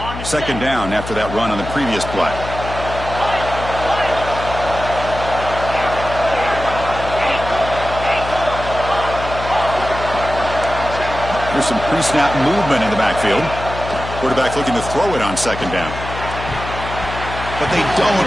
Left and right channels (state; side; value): noise; left; hum, 9 dB below the sound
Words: Second down after that run on the previous play. There's some pre-snap movement in the backfield. Quarterback looking to throw it on 2nd down. But they